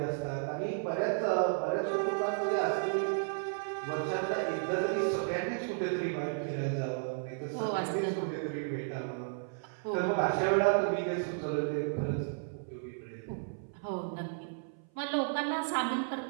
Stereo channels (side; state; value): left; silent; 56 dB below the other